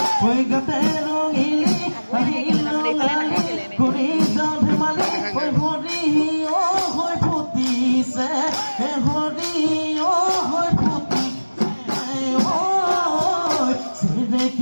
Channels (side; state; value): both; inverted; correlation -1.00